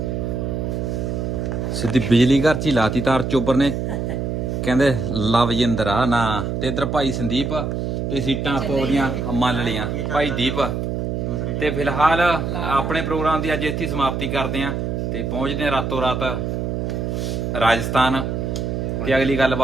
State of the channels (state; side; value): noise; right; hum, 2 dB below the sound